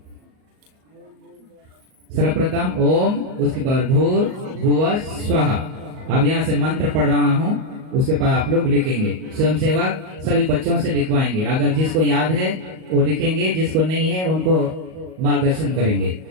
सर्वप्रथम ओम, उसके बाद भूर्भुवः स्वः। अब यहाँ से मंत्र पढ़ रहा हूँ, उसके बाद आप लोग लिखेंगे। स्वयंसेवक सभी बच्चों से लिखवाएंगे। अगर जिसको याद है वो लिखेंगे, जिसको नहीं है उनको मार्गदर्शन करेंगे।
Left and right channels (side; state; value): left; late; 38 ms